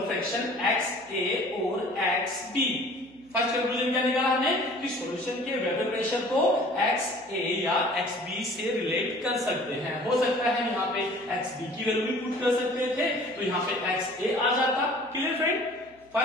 fraction X A और एक्स बी. फर्स्ट कंक्लूजन क्या निकाला हमने कि सॉल्यूशन के वेपर प्रेशर को एक्स ए या एक्स बी से रिलेट कर सकते हैं. हो सकता है यहाँ पे एक्स बी की वैल्यू भी पुट कर सकते थे तो यहाँ पे एक्स ए आ जाता. क्लियर फ्रेंड,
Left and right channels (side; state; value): right; noise; hum, 29 dB below the sound